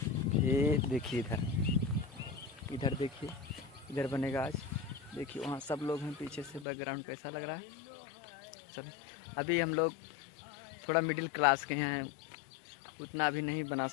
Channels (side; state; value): right; drops out; at 6.7 s